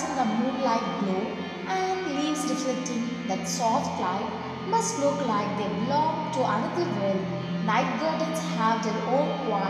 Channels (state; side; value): identical; both; correlation 1.00